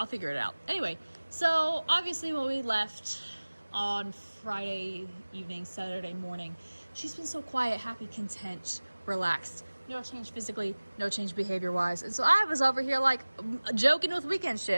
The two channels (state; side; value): inverted; both; correlation -1.00